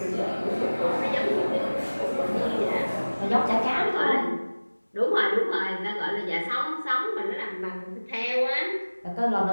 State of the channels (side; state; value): both; inverted; correlation -1.00